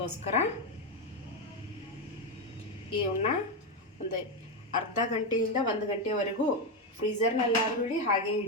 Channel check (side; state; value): both; normal; correlation 0.09